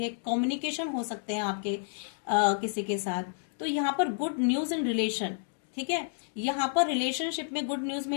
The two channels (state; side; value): silent; right; digital silence